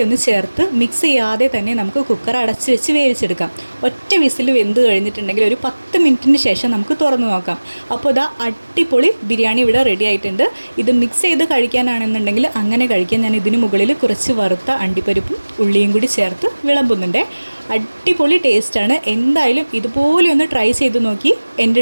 ഒന്ന് ചേർത്ത് മിക്സ് ചെയ്യാതെ തന്നെ നമുക്ക് കുക്കർ അടച്ച് വെച്ച് വേവിച്ചെടുക്കാം. ഒറ്റ വിസിൽ വെന്ത് കഴിഞ്ഞിട്ടുണ്ടെങ്കിൽ ഒരു 10 മിനിറ്റിന് ശേഷം നമുക്ക് തുറന്നു നോക്കാം. അപ്പോൾ ഇതാ അടിപൊളി ബിരിയാണി ഇവിടെ റെഡി ആയിട്ടുണ്ട്. ഇത് മിക്സ് ചെയ്ത് കഴിക്കാനാണെന്നുണ്ടെങ്കിൽ അങ്ങനെ കഴിക്കാൻ ഞാൻ ഇതിന് മുകളിൽ കുറച്ച് വറുത്ത അണ്ടിപ്പരിപ്പും ഉള്ളിയും കൂടി ചേർത്ത് വിളമ്പുന്നുണ്ട്. അടിപൊളി ടേസ്റ്റാണ്. എന്തായാലും ഇതുപോലെ ഒന്ന് ട്രൈ ചെയ്ത് നോക്കി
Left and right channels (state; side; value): inverted; both; correlation -1.00